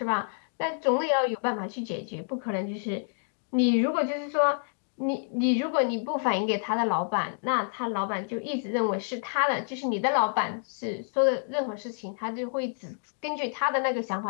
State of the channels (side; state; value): right; silent; digital silence